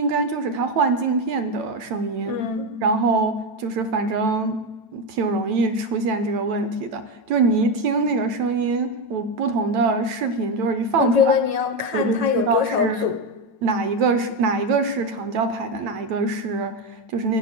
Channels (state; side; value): late; left; 9.1 ms